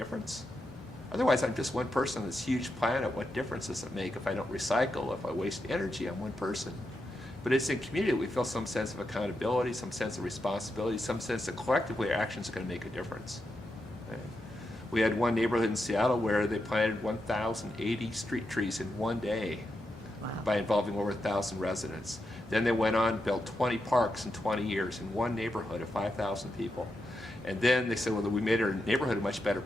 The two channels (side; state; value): both; normal; correlation 0.86